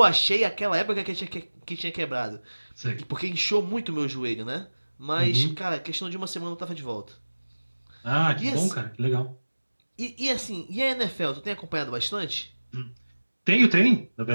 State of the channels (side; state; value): both; inverted; correlation -1.00